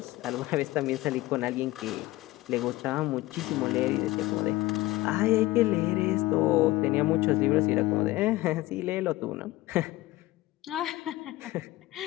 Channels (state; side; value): quieter; right; 18.0 dB